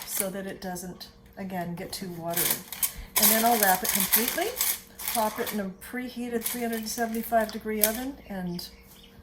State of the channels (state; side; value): identical; both; correlation 1.00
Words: so that it doesn't, again, get too watery. And then I'll wrap it completely, pop it in a preheated 375-degree oven, and